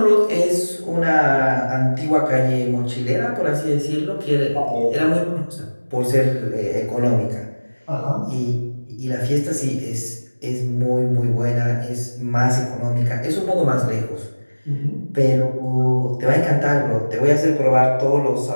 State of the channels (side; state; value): both; inverted; correlation -1.00